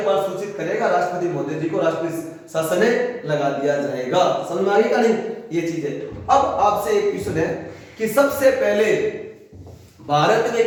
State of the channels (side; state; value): both; identical; correlation 1.00